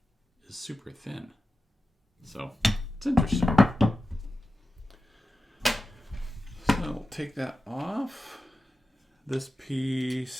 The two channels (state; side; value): normal; both; correlation 0.93